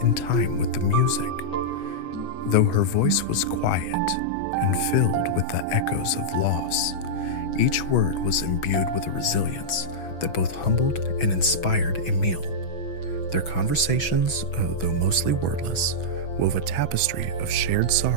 in time with the music. Though her voice was quiet and filled with the echoes of loss, each word was imbued with a resilience that both humbled and inspired Emil. Their conversations, though mostly wordless, wove a tapestry of shared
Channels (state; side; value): late; right; 6.1 ms